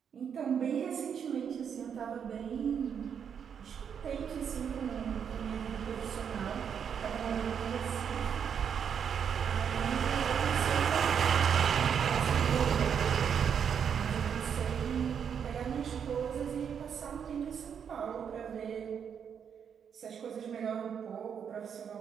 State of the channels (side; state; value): left; quieter; 7.6 dB